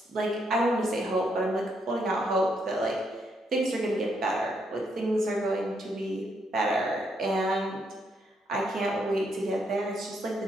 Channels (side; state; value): both; normal; correlation 0.76